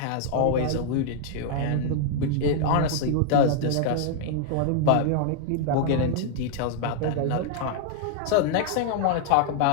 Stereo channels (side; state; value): both; different; correlation -0.01